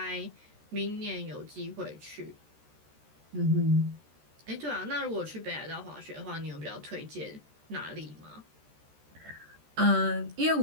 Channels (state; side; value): late; left; 13 ms